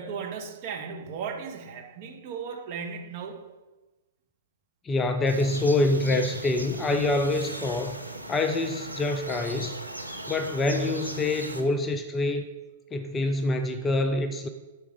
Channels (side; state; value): both; normal; correlation 0.51